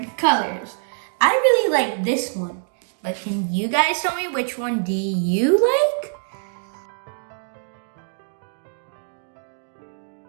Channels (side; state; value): left; silent; digital silence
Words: colors. I really like this one, but can you guys tell me which one do you like?